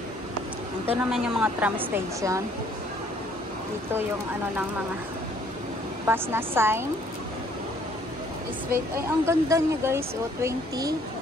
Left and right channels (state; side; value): normal; both; correlation 0.61